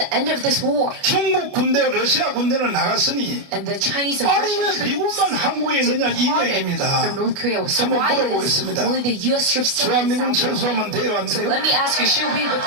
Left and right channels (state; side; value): late; left; 29 ms